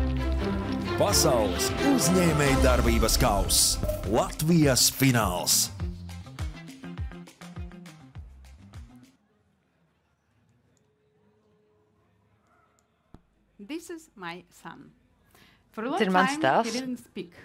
Pasaules uzņēmējdarbības kauss Latvijas fināls. This is my son. For a long time he didn't speak.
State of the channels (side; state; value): both; identical; correlation 1.00